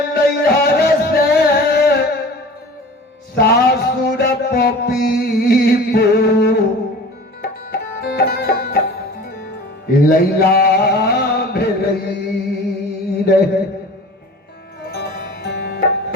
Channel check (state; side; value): normal; both; correlation 0.40